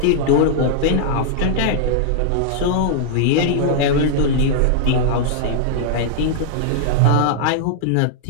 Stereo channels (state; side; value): different; both; correlation -0.01